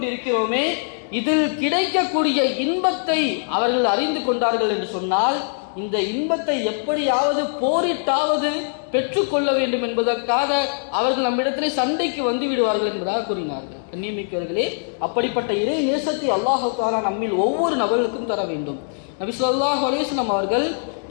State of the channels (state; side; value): silent; right; digital silence